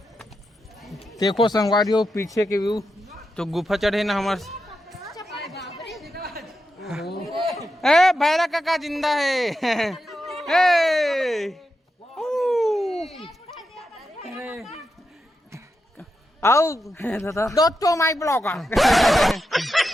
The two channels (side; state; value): both; normal; correlation 0.87